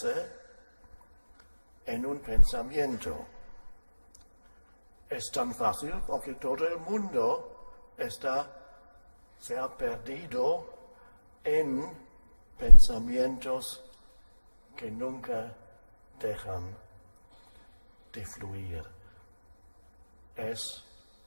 en un pensamiento. Es tan fácil porque todo el mundo se ha perdido en pensamientos que nunca dejan de fluir. Es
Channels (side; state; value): both; inverted; correlation -1.00